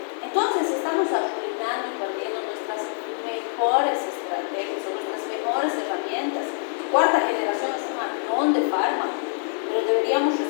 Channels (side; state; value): right; silent; 62 dB below the other